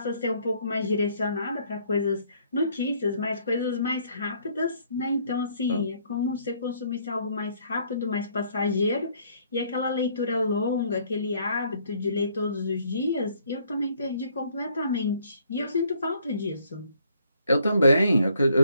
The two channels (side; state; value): both; inverted; correlation -0.65